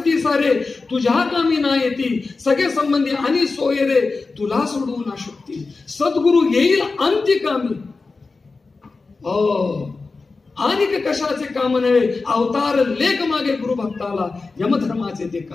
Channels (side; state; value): right; quieter; 4.0 dB